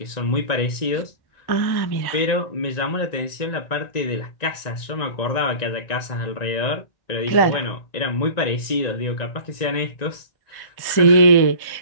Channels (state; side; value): late; right; 1.9 ms